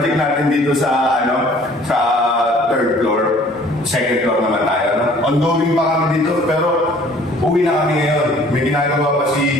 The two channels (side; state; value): both; normal; correlation 0.54